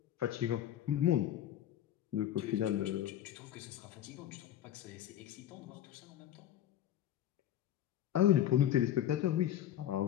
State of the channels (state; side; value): quieter; right; 11.3 dB